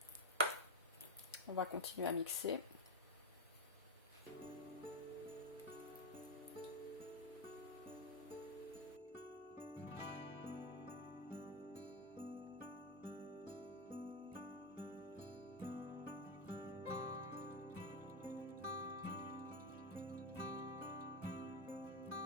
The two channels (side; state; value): both; normal; correlation 0.07